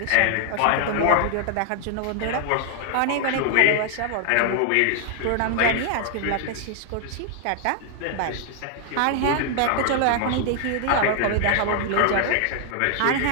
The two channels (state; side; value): different; both; correlation 0.00